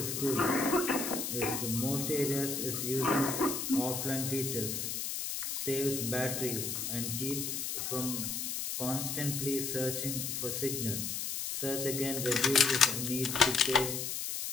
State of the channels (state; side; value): noise; left; hiss, 3 dB below the sound